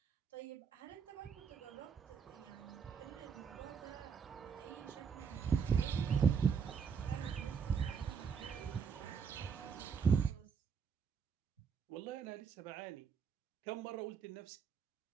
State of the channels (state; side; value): quieter; left; 6.5 dB